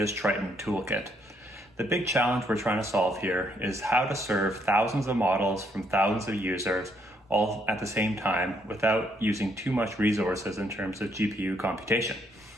Triton toolkit. The big challenge we're trying to solve here is how to serve thousands of models from thousands of users all at the same time without using too much resources in terms of GPU computation.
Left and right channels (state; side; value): normal; both; correlation 0.71